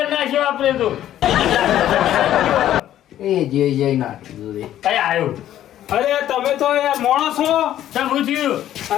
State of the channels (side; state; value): right; quieter; 12.1 dB